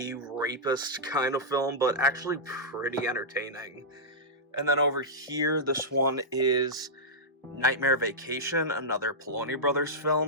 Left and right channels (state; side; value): normal; both; correlation -0.11